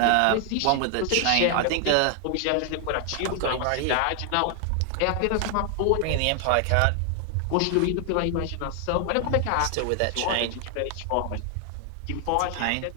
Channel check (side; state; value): both; different; correlation 0.00